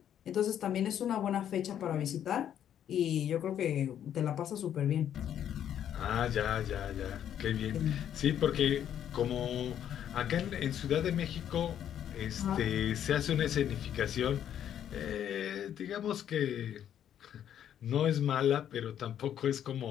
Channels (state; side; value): quieter; right; 10.0 dB